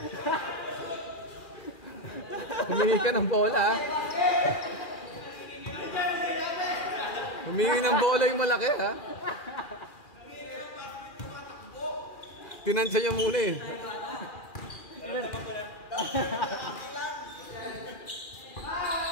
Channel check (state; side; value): late; right; 2.4 ms